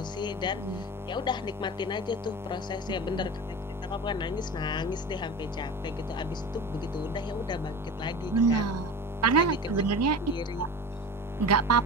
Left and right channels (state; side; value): normal; both; correlation 0.32